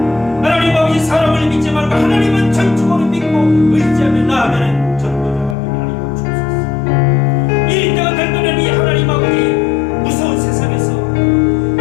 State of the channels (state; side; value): drops out; right; at 5.6 s